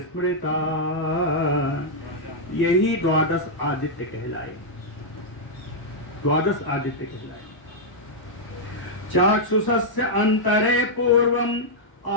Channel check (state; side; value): late; right; 1.1 ms